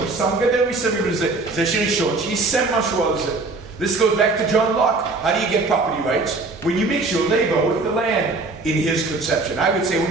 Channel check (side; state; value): left; quieter; 3.5 dB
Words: שם גדר מסביב לזה. זה שראשון שיישם משהו על זה. This goes back to John Locke. How do you get property rights? When you mix your labor with the land in his conception. I would say when